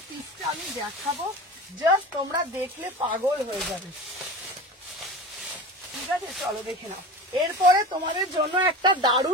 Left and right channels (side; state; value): both; normal; correlation 0.32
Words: পিসটা আমি দেখাবো, জাস্ট তোমরা দেখলে পাগল হয়ে যাবে। ঠিক আছে, চলো দেখে নাও। এরপরে তোমাদের জন্য একটা